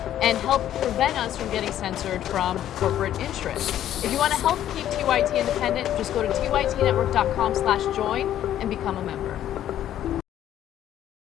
and help prevent us from getting censored from corporate interests. If you want to help keep TYT independent, just go to tytnetwork.com/join and become a member.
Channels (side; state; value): right; quieter; 11.6 dB